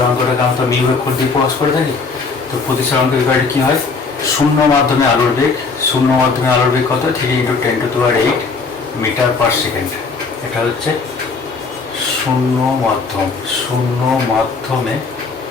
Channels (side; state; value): right; quieter; 4.5 dB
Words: আমরা মিউ অক্ষর দিয়ে প্রকাশ করে থাকি। তো প্রতিসরাঙ্কের ব্যাপারে কী হয়, শূন্য মাধ্যমে আলোর বেগ কত, 3 × 10⁸ মিটার পার সেকেন্ড। এটা হচ্ছে শূন্য মাধ্যমে